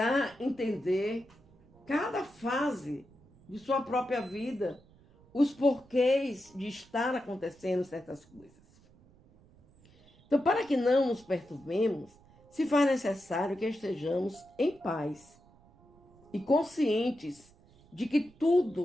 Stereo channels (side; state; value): right; noise; rumble, 27 dB below the sound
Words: entender cada fase de sua própria vida, os porquês de estar acontecendo certas coisas. Então, para que não nos perturbemos, se faz necessário que estejamos em paz e conscientes de que